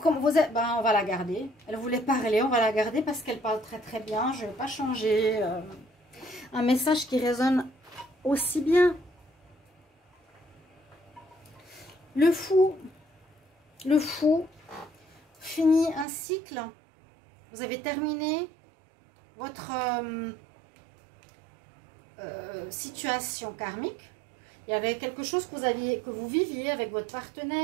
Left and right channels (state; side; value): drops out; left; at 16.1 s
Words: on va la garder. Elle voulait parler, on va la garder parce qu'elle parle très très bien. Je ne vais pas changer. Un message qui résonne aussi bien. Le fou finit un cycle. Vous avez terminé votre situation karmique. Il y avait quelque chose que vous viviez avec votre